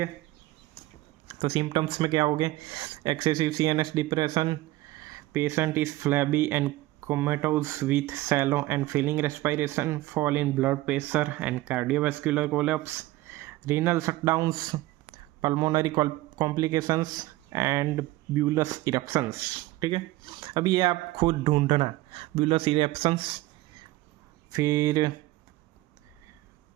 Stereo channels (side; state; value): left; quieter; 17.8 dB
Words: तो सिम्टम्स में क्या हो गए? Excessive CNS depression, patient is flabby and comatose with shallow and failing respiration, fall in blood pressure and cardiovascular collapse, renal shutdowns, pulmonary complications and bullous eruptions, ठीक है। अब ये आप खुद ढूंढना, ब्यूलस इरप्शंस, फिर